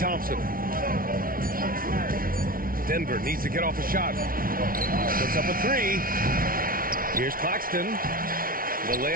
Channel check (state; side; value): late; left; 0.42 ms